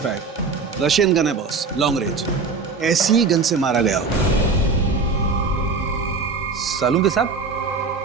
रशियन गन है बॉस, लॉन्ग रेंज। ऐसी ही गन से मारा गया होगा। सालुंके साहब,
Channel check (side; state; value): left; quieter; 4.4 dB